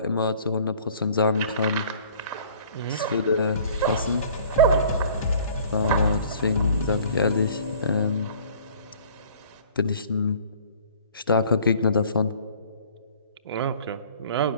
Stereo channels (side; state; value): both; inverted; correlation -0.51